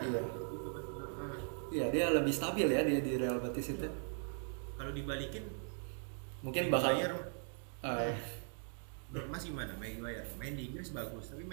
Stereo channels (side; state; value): left; silent; 51 dB below the other